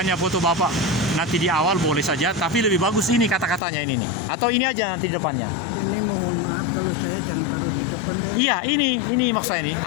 foto Bapak nanti di awal boleh saja, tapi lebih bagus ini kata-katanya ini nih. Atau ini aja nanti di depannya. Ini mohon maaf kalau saya jangan taruh di depan deh. Iya, ini maksud saya ini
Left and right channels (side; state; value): right; drops out; at 3.6 s